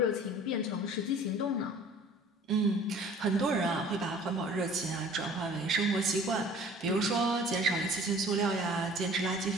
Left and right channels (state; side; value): normal; both; correlation 0.49